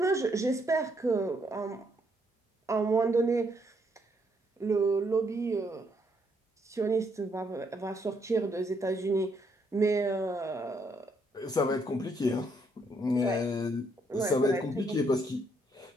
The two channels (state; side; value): normal; both; correlation 0.73